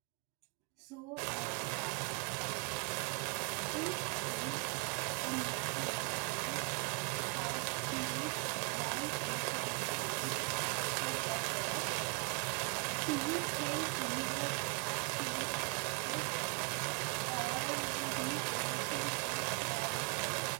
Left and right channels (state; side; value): quieter; left; 32.2 dB